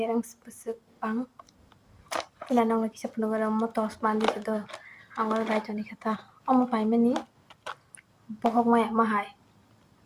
earrings pusuk pang ila nong la kisa puno gara mo tos mandi do angol bai jani kata omo pai mani bohok maya mahai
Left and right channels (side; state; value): both; identical; correlation 1.00